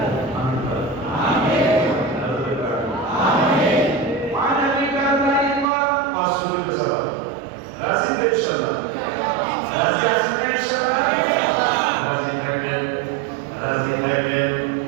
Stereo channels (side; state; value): left; drops out; at 5.7 s